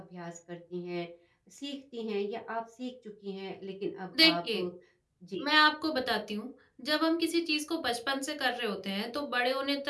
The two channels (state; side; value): identical; both; correlation 1.00